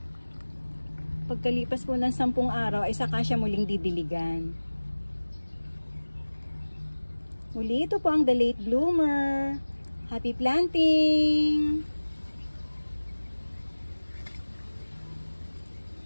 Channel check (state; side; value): inverted; both; correlation -1.00